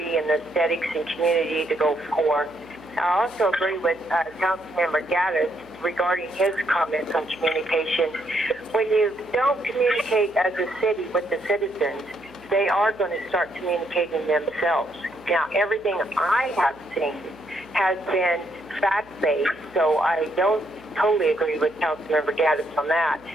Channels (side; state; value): right; noise; hum, 26 dB below the sound